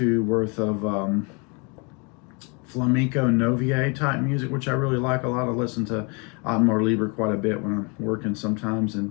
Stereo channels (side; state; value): right; quieter; 32.3 dB